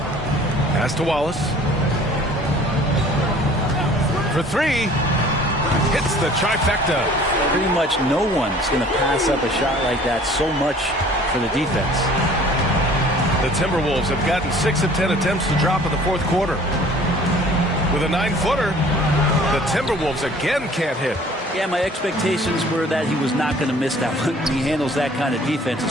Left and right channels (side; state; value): both; normal; correlation 0.51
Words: Pass to Wallace. For three. Hits the trifecta. Pretty much no one's going to pass up a shot like that so much for the defense. The Timberwolves have gotten 6 of 10 attempts to drop in the fourth quarter. With a 9-footer, the Timberwolves again can't hit. Yeah, my expectations were that he was not going to miss that one. He handles that kind of defense,